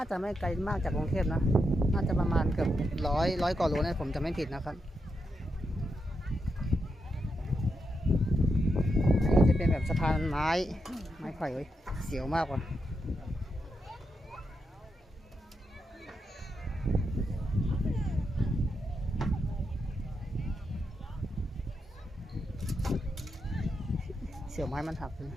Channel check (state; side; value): normal; both; correlation 0.84